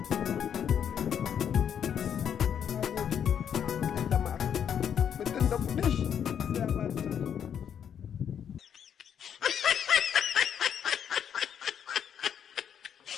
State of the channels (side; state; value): right; quieter; 8.5 dB